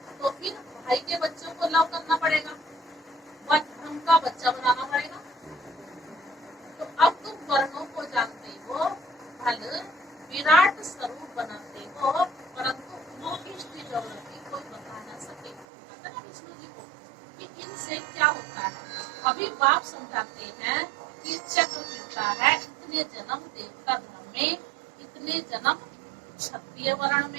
तो फिर भाई के बच्चों को लव करना पड़ेगा, वह धर्म का बच्चा बनाना पड़ेगा। तो अब तुम वर्णों को जानते हो, फल विराट स्वरूप बनाते हो, परंतु मोहिष्ठी ज्योग्राफी कोई बता न सके। पता ना विष्णु जी को कि इनसे क्या होता है। अभी बाप समझाते हैं कि चक्र फिरता है, इतने जन्म देवता धर्म में, इतने जन्म क्षत्रिय वर्ण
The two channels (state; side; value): drops out; left; at 15.7 s